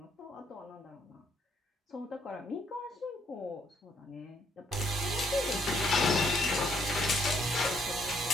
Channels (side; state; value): both; normal; correlation 0.69